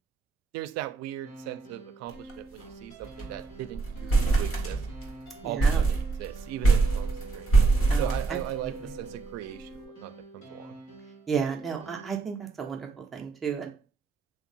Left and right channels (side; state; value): left; quieter; 4.1 dB